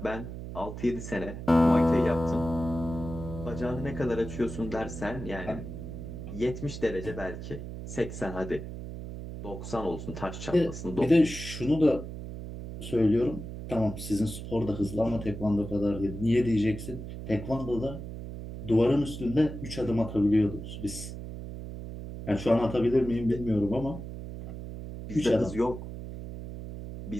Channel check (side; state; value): right; noise; hum, 9 dB below the sound